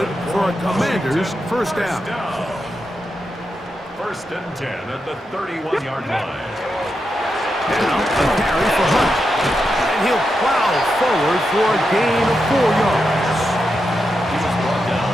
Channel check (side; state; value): both; normal; correlation 0.86